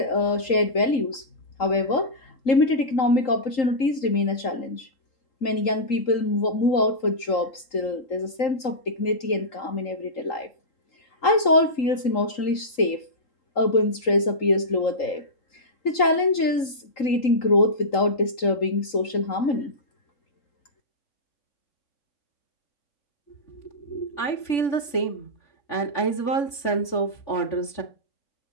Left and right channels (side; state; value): right; late; 3.8 ms